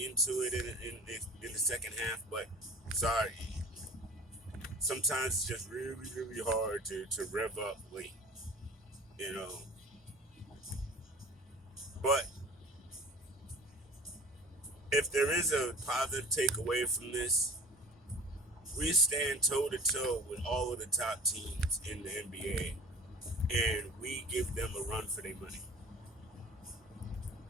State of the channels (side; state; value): both; normal; correlation 0.43